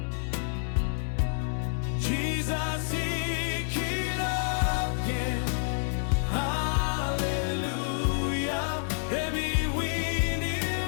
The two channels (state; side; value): silent; right; 59 dB below the other